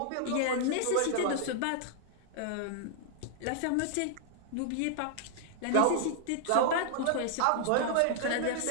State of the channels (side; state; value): both; different; correlation -0.01